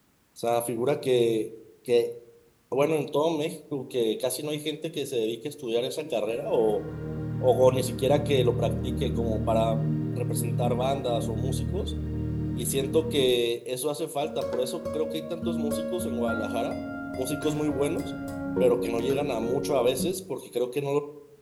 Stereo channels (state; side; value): identical; both; correlation 1.00